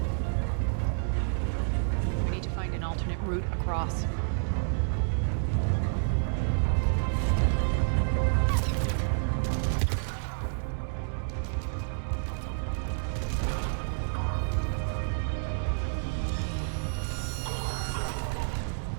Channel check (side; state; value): left; silent; digital silence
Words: We need to find an alternate route across.